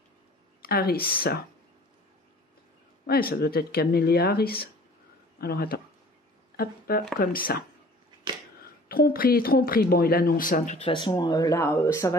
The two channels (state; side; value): normal; both; correlation 0.49